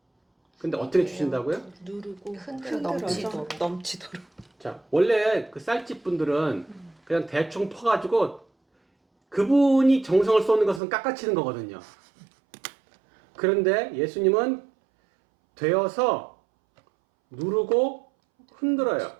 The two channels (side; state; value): left; drops out; at 10.8 s